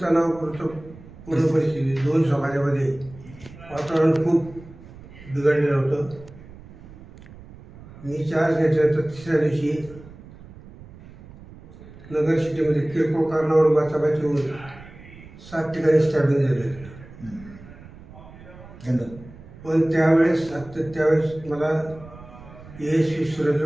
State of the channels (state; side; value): noise; right; rumble, 19 dB below the sound